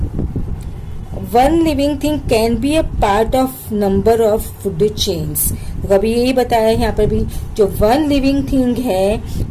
One living thing can be a part of number of food chains. तो अभी यही बताया है यहाँ पर भी, जो वन लिविंग थिंग है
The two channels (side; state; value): both; identical; correlation 1.00